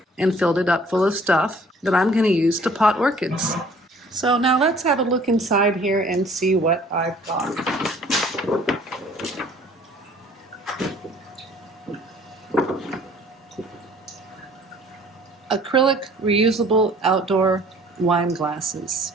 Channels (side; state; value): both; normal; correlation 0.54